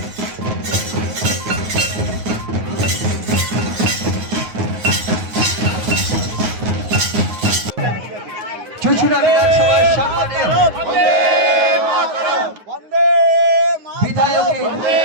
চুঁচুড়া বিধানসভার সম্মানীয় বিধায়কের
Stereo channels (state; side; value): late; left; 9.5 ms